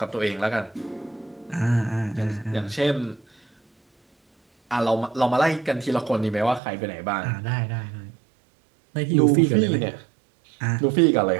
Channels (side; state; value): left; drops out; at 6.6 s